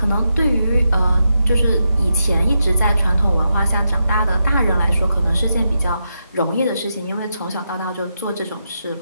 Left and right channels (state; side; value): inverted; both; correlation -0.84